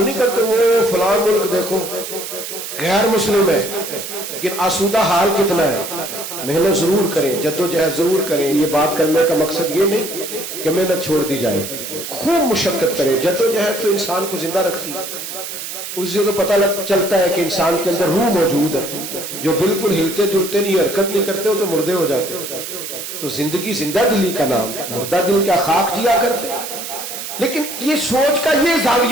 نہیں کرتے وہ فلاں ملک دیکھو غیر مسلم ہے لیکن آسودہ حال کتنا ہے. محنت ضرور کریں، جدوجہد ضرور کریں. یہ بات کرنے کا مقصد یہ نہیں کہ محنت چھوڑ دی جائے، خوب مشقت کریں. جدوجہد تو انسان کو زندہ رکھتی ہے. اس سے تو پتہ چلتا ہے کہ انسان کے اندر روح موجود ہے. جو بالکل ہلتے جلتے نہیں، حرکت نہیں کرتے، وہ تو مردے ہو جاتے. تو زندگی زندہ دلی کا نام، مردہ دل کیا خاک جیا کرتے. لیکن یہ سوچ کا یہ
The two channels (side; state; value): right; noise; hiss, 8 dB below the sound